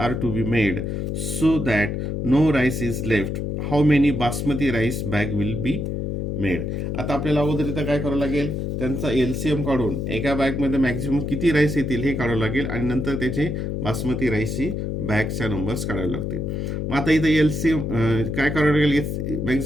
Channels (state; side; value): noise; left; hum, 2 dB below the sound